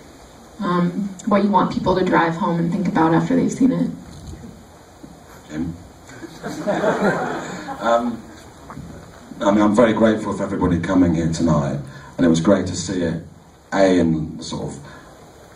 what you want people to drive home and think about after they've seen it. I mean, I'm very grateful for everybody coming here tonight, and it was great to see it, in the sort of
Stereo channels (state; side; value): identical; both; correlation 1.00